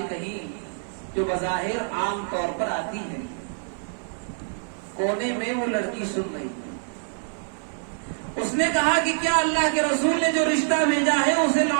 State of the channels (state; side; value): silent; left; 58 dB below the other